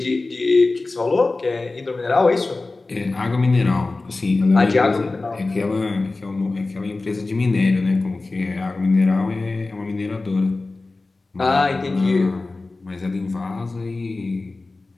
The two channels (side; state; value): right; quieter; 3.4 dB